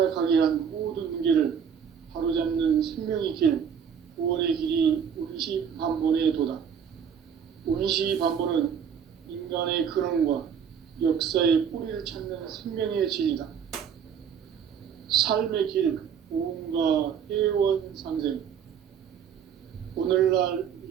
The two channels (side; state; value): left; quieter; 7.6 dB